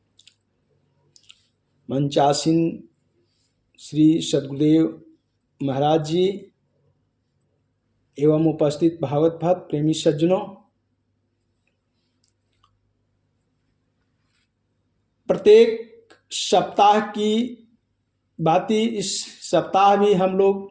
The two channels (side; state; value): both; identical; correlation 1.00